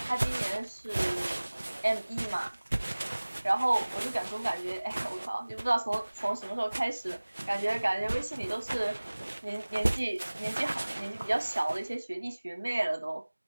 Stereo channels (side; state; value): both; inverted; correlation -1.00